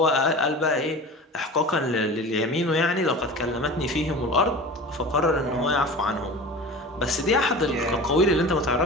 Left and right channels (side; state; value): both; normal; correlation 0.35